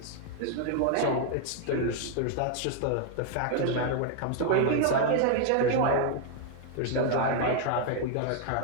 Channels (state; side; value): different; both; correlation 0.00